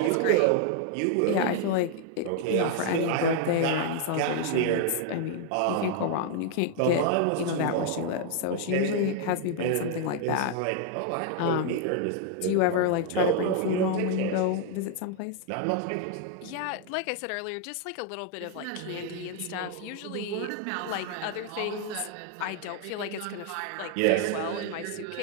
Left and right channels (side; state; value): both; different; correlation 0.00